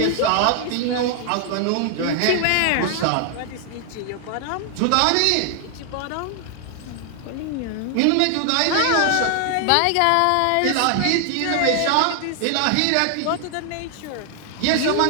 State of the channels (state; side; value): different; both; correlation 0.00